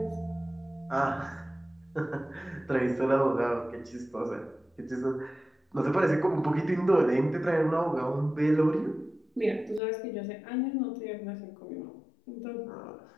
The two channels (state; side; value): drops out; right; at 9.8 s